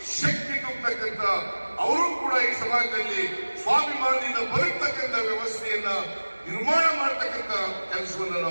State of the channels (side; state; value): both; inverted; correlation -1.00